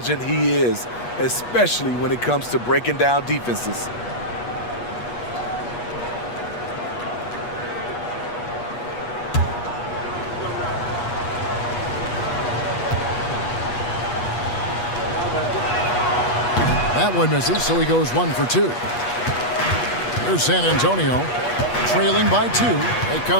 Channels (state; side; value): late; right; 8.3 ms